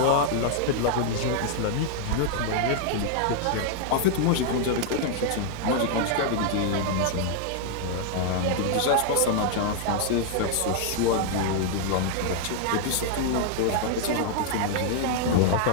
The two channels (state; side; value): different; both; correlation 0.00